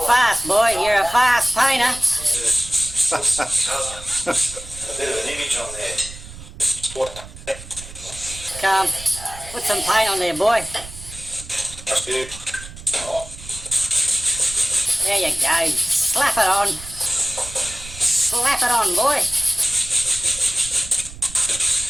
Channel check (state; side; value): noise; right; rumble, 15 dB below the sound